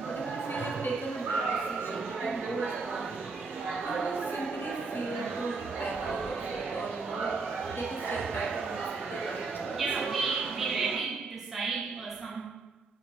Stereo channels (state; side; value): quieter; left; 4.1 dB